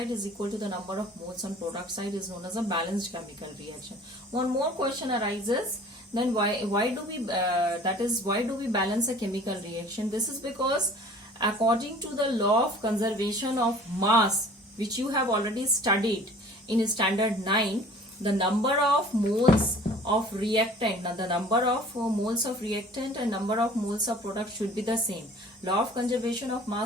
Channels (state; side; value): normal; both; correlation 0.48